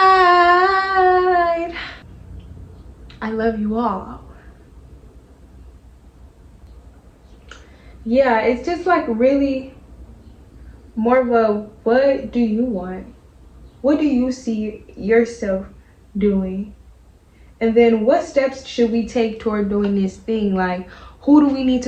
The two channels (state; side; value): identical; both; correlation 1.00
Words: I love you all. Yeah, it's just like really more of a, what do you want? What do you see yourself doing? And then what steps should we take toward doing this thing? Like, who do we need